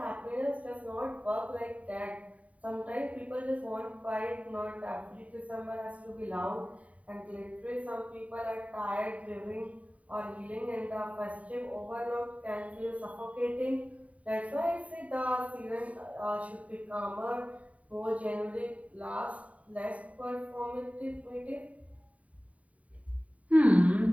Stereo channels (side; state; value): left; late; 0.068 ms